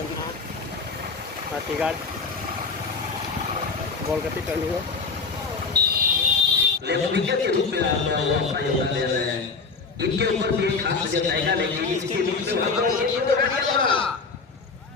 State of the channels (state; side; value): quieter; right; 4.6 dB